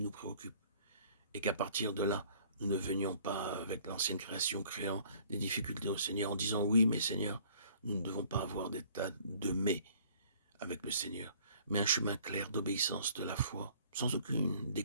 préoccupe. Et qu'à partir de là, nous ne venions pas avec l'ancienne création créant des difficultés au Seigneur en disant oui mais Seigneur, nous ne devons pas avoir des tas de mais avec le Seigneur, mais un chemin clair d'obéissance de la foi, sans aucune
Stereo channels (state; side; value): inverted; both; correlation -0.56